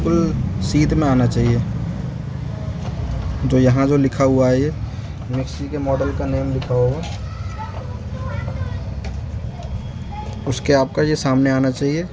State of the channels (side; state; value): both; identical; correlation 1.00